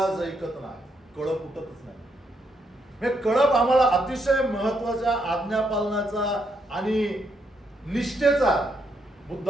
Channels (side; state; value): both; normal; correlation 0.77